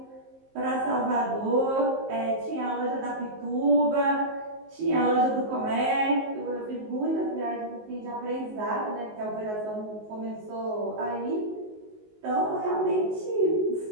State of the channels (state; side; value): late; left; 19 ms